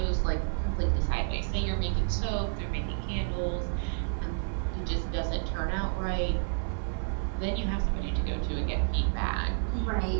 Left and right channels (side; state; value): left; silent; 58 dB below the other